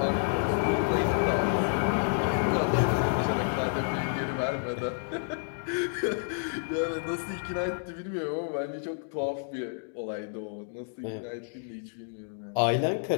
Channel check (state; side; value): silent; right; digital silence